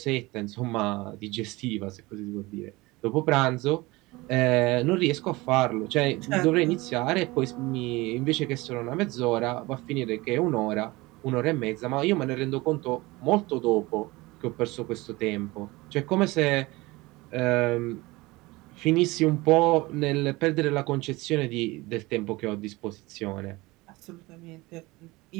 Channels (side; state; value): left; quieter; 21.8 dB